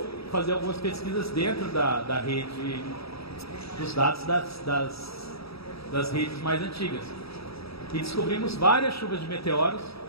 fazer algumas pesquisas dentro da rede dos dados das redes mais antigas. E descobrimos várias chuvas de meteoros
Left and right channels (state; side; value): late; right; 0.77 ms